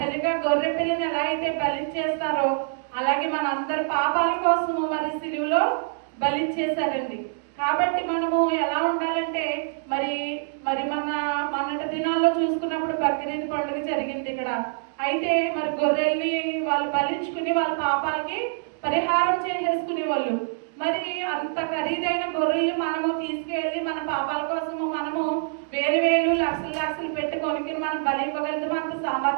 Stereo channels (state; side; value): silent; left; digital silence